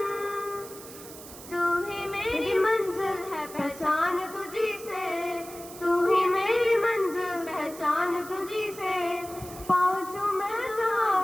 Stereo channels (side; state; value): right; noise; hiss, 16 dB below the sound